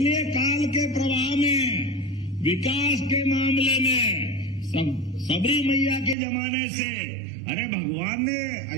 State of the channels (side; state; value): left; drops out; at 6.2 s